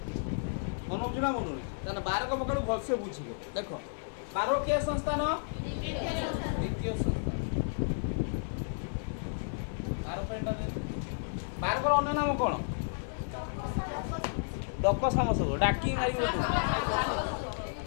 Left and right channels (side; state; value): right; silent; digital silence